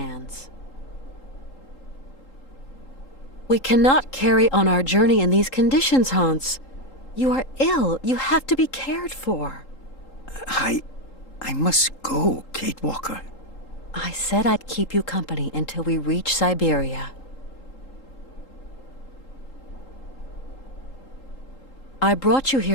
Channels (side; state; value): right; late; 3.8 ms